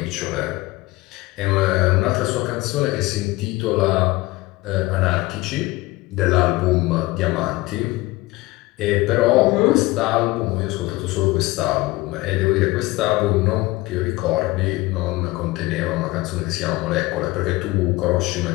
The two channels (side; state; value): right; quieter; 20.5 dB